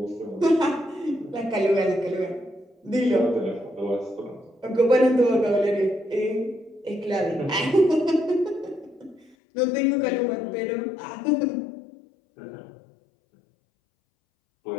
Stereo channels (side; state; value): right; drops out; at 9.3 s